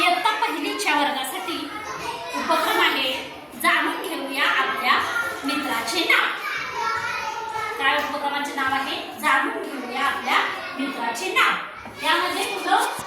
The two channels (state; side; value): identical; both; correlation 1.00